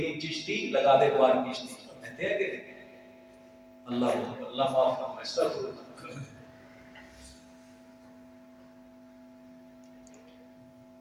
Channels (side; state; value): both; identical; correlation 1.00